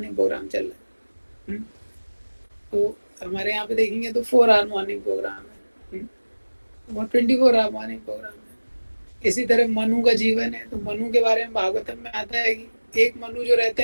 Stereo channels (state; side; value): inverted; both; correlation -1.00